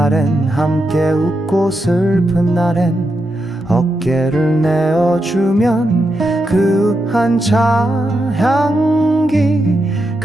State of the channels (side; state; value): both; normal; correlation 0.85